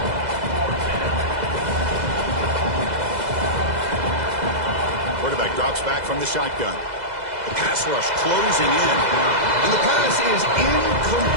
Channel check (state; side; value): late; left; 2.0 ms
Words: Quarterback drops back from the shotgun. The pass rush closing in. And the pass is